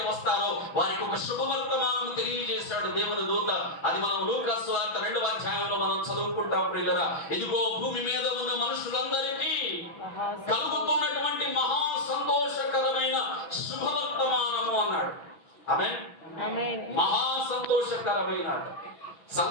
వస్తారో వారికి ఒక శుభవర్తమానం తెలియజేశాడు దేవుని దూత. అది మనం లూకాసు వార్త 2వ అధ్యాయంలో మనం చదువుకుంటాం ప్రియులరా. ఇదిగో భూమి మీద ఉన్న మనుషులందరికీ కలుగుతున్నటువంటి మహా సంతోషకరమైన శుభవర్తమానము అన్నాడు. ఆమేన్. మహా సంతోషకరమైన,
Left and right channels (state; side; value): late; right; 6.1 ms